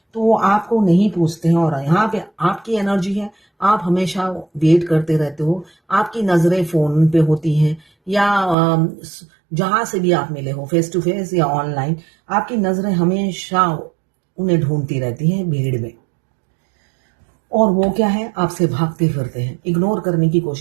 तो वो आपको नहीं पूछते हैं। और यहाँ पे आपकी एनर्जी है, आप हमेशा वेट करते रहते हो, आपकी नजरें फोन पे होती हैं या जहां से भी आप मिले हो, फेस टू फेस या ऑनलाइन, आपकी नजरें हमेशा उन्हें ढूंढती रहती हैं भीड़ में। और वो क्या है, आपसे भागते फिरते हैं, इग्नोर करने की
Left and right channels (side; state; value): left; drops out; at 8.6 s